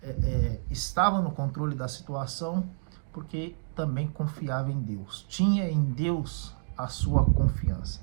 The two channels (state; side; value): silent; left; digital silence